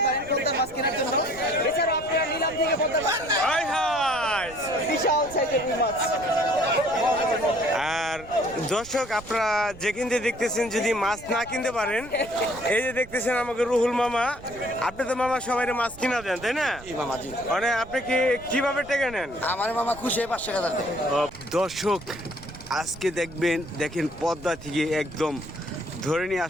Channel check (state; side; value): noise; right; rumble, 17 dB below the sound